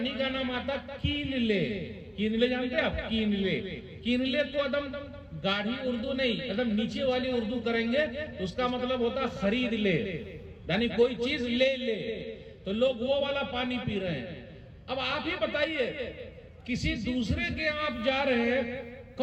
का नाम आता कीनले। कीनले जानते हैं आप? कीनले। कीनले तो एकदम गाढ़ी उर्दू नहीं, एकदम नीचे वाली उर्दू करेंगे तो उसका मतलब होता खरीद ले, यानी कोई चीज ले ले। तो लोग वो वाला पानी पी रहे हैं। अब आप ही बताइए, किसी दूसरे के आप जा रहे हैं,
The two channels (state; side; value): identical; both; correlation 1.00